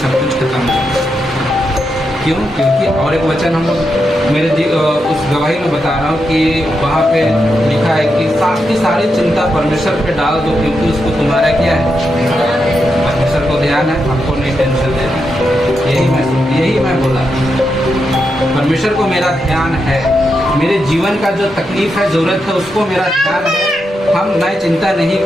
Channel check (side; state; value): both; normal; correlation 0.85